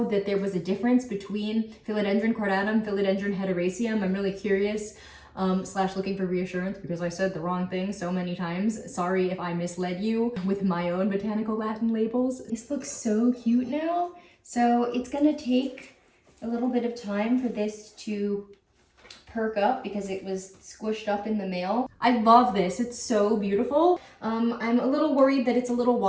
that there was a difference between Philodendron cordatum, Philodendron hederaceum. I'm really curious. / looking for reassurance because I said the wrong thing so many times. Sorry if I misled you with my own botanical Latin labels. This looks so cute now. So it's gonna take a little bit of time for this to perk up because it was squished up in the mail. I love this, it's so beautiful. I'm a little worried that it's a little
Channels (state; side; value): identical; both; correlation 1.00